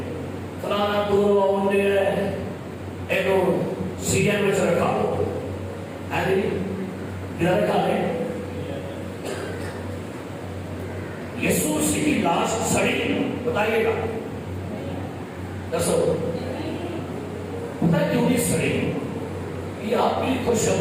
فلانا دور آؤنڈے ہے ایک سیجن میں سے رکھا ہو ہے ادھر رکھا لیں. یسوع مسیح کی لاش سڑی، بتائیے گا دسو پتہ کیوں نہیں سڑی؟ یہ آپ کی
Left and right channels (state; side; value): identical; both; correlation 1.00